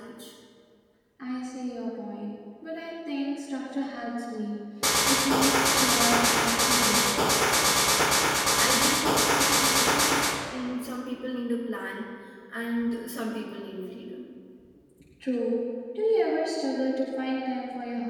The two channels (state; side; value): identical; both; correlation 1.00